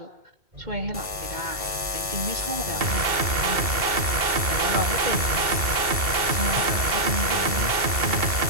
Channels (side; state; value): left; late; 2.2 ms